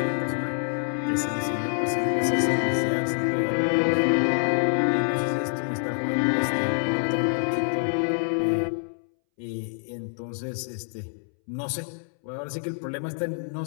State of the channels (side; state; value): right; silent; 61 dB below the other